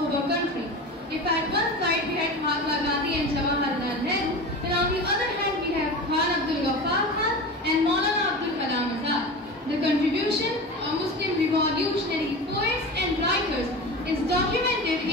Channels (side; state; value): both; normal; correlation 0.29